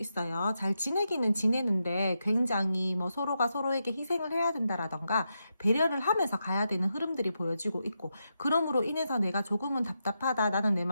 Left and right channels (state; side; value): inverted; both; correlation -0.86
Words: 잘 지내기는 지내는데 굉장히 뭐 서로가 서로에게 희생을 해야 된다라던가 배려를 하면서 가야 되는 흐름들이 보여지고 있고 그럼으로 인해서 내가 조금은 답답하다 나는 내